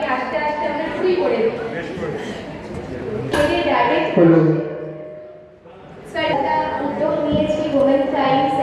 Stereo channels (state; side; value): identical; both; correlation 1.00